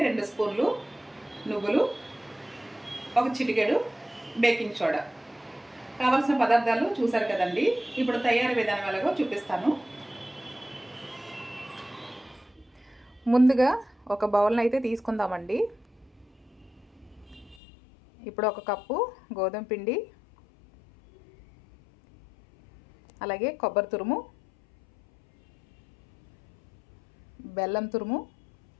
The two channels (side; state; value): right; drops out; at 17.6 s